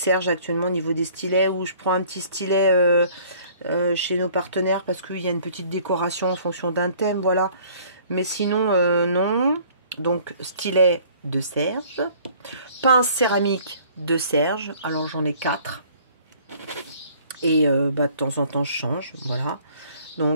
actuellement au niveau des stylets, où je prends un petit stylet chez nos partenaires parce qu'il y a une petite décoration en fonction d'un thème, voilà. Mais sinon, non. Donc, stylet de Serge. Pince céramique de Serge. Alors, j'en ai 4. Et bah, de temps en temps, je change, voilà.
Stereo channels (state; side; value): inverted; both; correlation -0.55